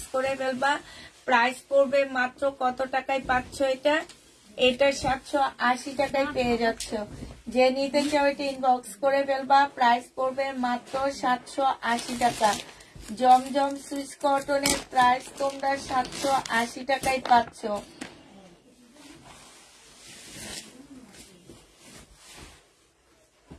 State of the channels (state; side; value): identical; both; correlation 1.00